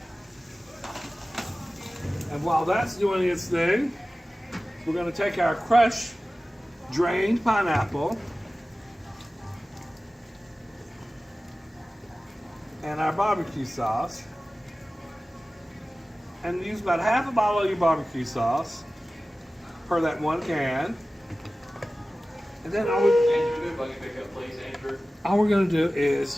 And while that's doing its thing, we're going to take our crushed, drained pineapple and our barbecue sauce and use about half a bottle of your barbecue sauce per that 1 can. And then all we're going to do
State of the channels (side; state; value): both; normal; correlation 0.96